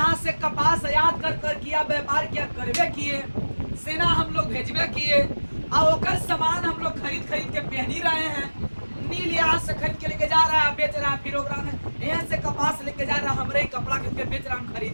से कपास आयात कर किया, व्यापार किया, करवे किए, सेना हम लोग भेजवे किए, और ओकर सामान हम लोग खरीद के पहनी रहे हैं। नील यहाँ से खरीद के लेके जा रहा है, बेच रहा है, फिर ओकरा में यहाँ से कपास लेके जा रहा है, हमरे ही कपड़ा खरीद के बेच रहा है, हम खरीद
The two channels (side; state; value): both; inverted; correlation -1.00